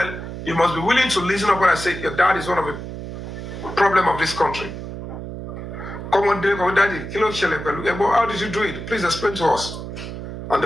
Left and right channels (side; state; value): right; noise; hum, 8 dB below the sound